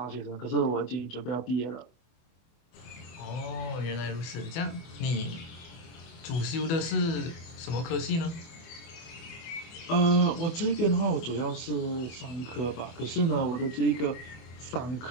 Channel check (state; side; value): late; right; 24 ms